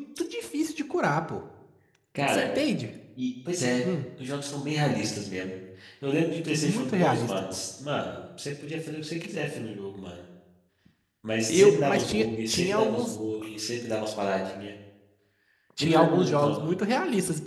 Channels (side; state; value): both; identical; correlation 1.00